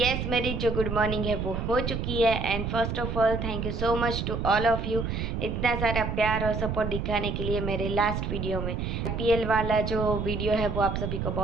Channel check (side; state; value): right; noise; rumble, 2 dB below the sound